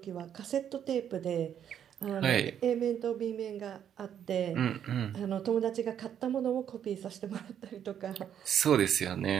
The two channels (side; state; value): left; quieter; 9.3 dB